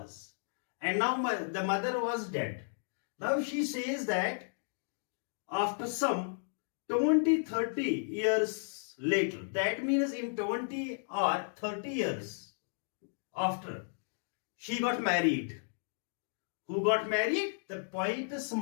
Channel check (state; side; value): silent; right; digital silence